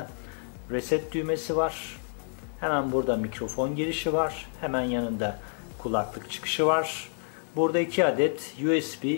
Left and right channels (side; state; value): right; silent; 59 dB below the other